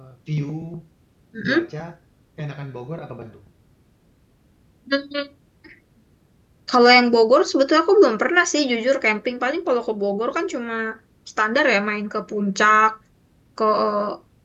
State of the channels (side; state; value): both; identical; correlation 1.00